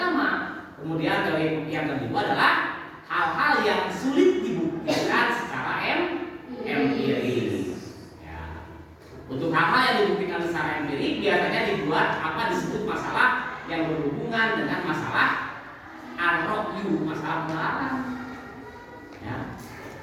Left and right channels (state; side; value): identical; both; correlation 1.00